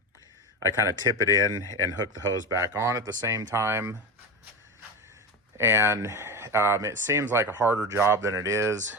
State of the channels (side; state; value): both; normal; correlation 0.21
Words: I kind of tip it in and hook the hose back on at the same time. And it seems like a harder job than it is,